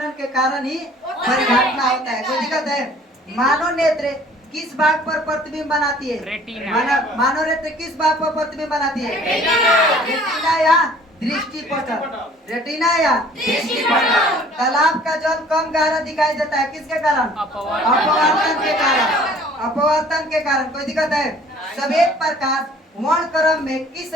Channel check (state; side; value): normal; both; correlation 0.53